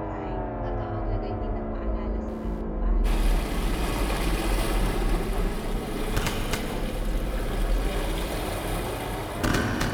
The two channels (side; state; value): both; identical; correlation 1.00